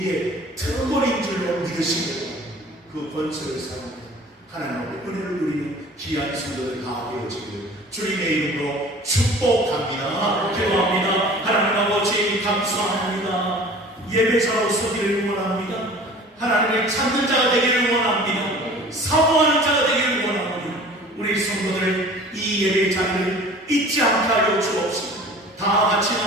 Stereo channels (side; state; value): both; normal; correlation 0.45